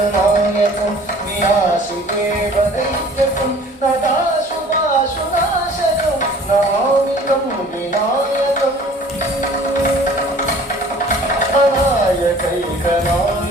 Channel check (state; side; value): normal; both; correlation 0.49